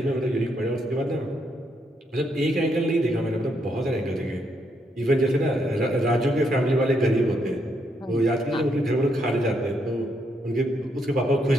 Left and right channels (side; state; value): both; normal; correlation 0.76